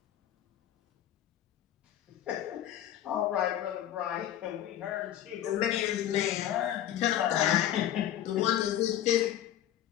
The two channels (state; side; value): quieter; right; 11.6 dB